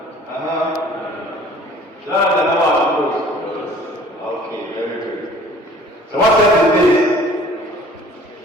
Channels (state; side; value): normal; both; correlation 0.50